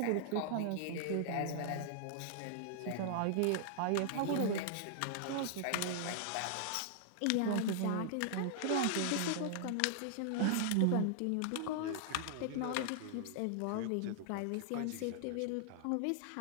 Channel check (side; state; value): both; different; correlation -0.01